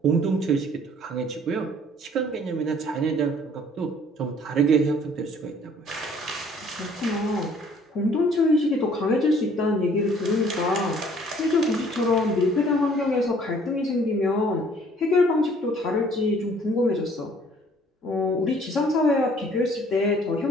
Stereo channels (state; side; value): normal; both; correlation 0.57